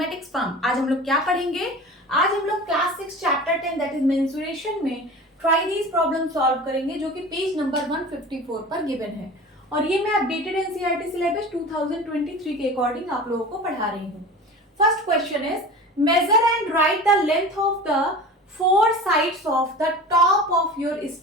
firm. आज हम लोग क्या पढ़ेंगे? आज हम लोग class 6 chapter 10 that is mensuration में ट्राई दीज प्रॉब्लम सॉल्व करेंगे, जो कि पेज नंबर 154 पर गिवन है। और ये मैं अपडेटेड एनसीईआरटी सिलेबस 2023 के अकॉर्डिंग आप लोगों को पढ़ा रही हूँ। First question is measure and write the length of the four sides of the top of your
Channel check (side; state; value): both; normal; correlation 0.35